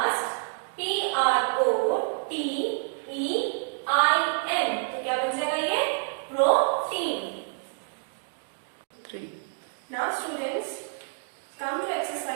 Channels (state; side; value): silent; left; digital silence